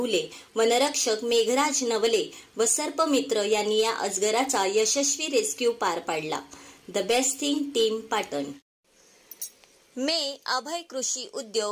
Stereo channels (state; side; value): identical; both; correlation 1.00